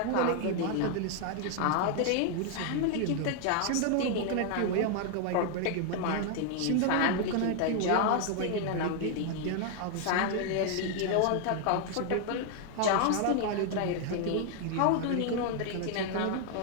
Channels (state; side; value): different; both; correlation 0.00